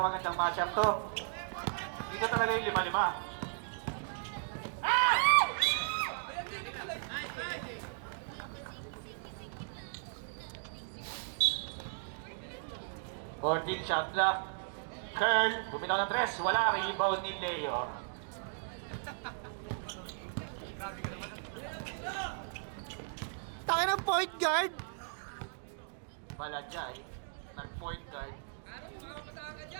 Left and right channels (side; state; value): left; silent; digital silence